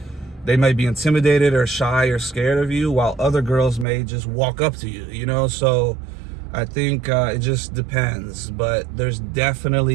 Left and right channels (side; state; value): left; drops out; at 3.9 s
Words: they might be intimidated or shy or scared of you, while other girls may just walk up to you, So I think it just depends. But there's